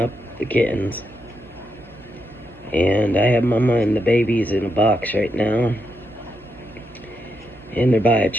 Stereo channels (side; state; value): both; normal; correlation 0.82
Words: the kittens. And I have Mama and the babies in a box right now. And they're by a